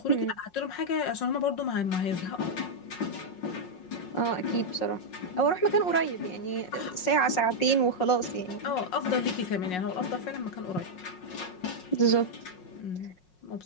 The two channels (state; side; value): late; right; 5.5 ms